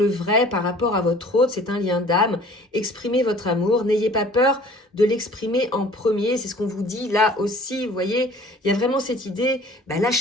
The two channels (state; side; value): normal; both; correlation 0.50